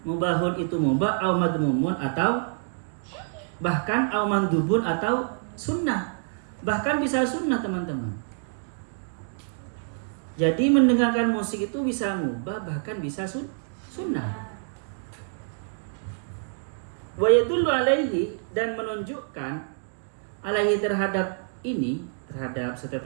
Mubahun itu mubah au madmumun atau bahkan au mandubun atau sunnah. Bahkan bisa sunnah teman-teman. Jadi mendengarkan musik itu bisa mubah bahkan bisa sunnah. Wa yadullu alaihi dan menunjukkan alaihi terhadap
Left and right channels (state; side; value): silent; left; digital silence